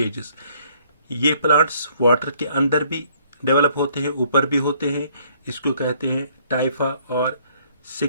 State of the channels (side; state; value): both; inverted; correlation -0.64